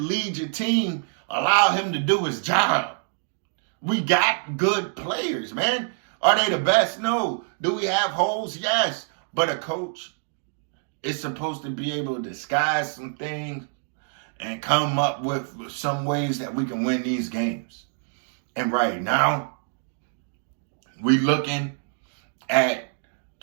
your team, allow him to do his job. We got good players, man. Are they the best? No. Do we have holes? Yes. But a coach is supposed to be able to disguise some things and come up with some ways that we can win these games. And right now, we looking at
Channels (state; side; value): silent; left; 61 dB below the other